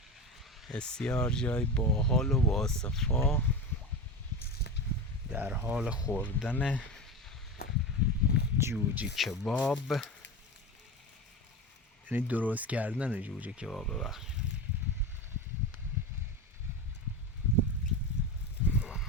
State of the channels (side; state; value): both; normal; correlation 0.25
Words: بسیار جای باحال و باصفا، در حال خوردن جوجه کباب، یعنی درست کردن جوجه کباب. ببخش